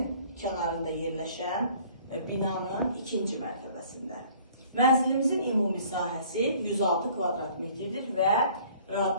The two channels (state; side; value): inverted; both; correlation -0.54